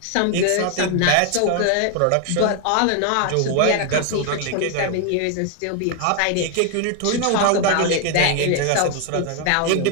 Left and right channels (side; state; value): both; different; correlation 0.00